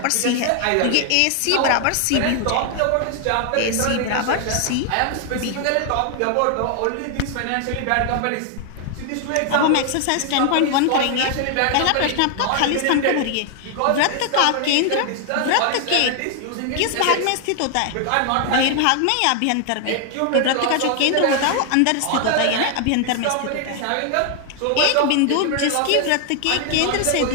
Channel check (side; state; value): both; different; correlation 0.00